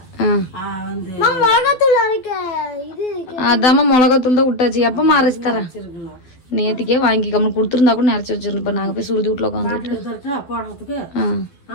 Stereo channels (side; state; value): right; late; 12 ms